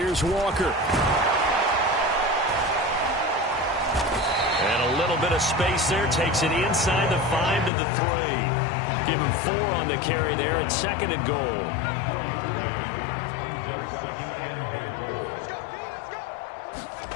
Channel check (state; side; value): drops out; right; at 7.7 s